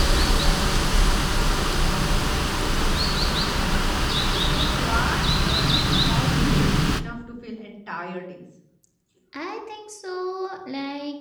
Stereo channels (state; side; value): identical; both; correlation 1.00